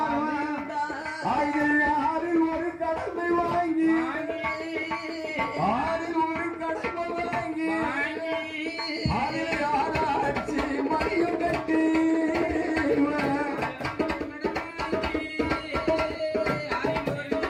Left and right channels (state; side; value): identical; both; correlation 1.00